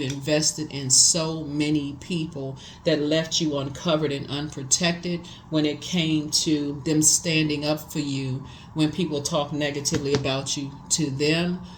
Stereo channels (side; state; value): both; identical; correlation 1.00